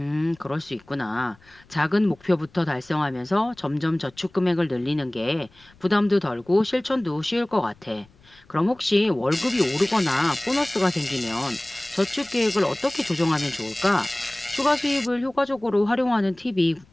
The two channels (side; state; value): left; noise; rumble, 29 dB below the sound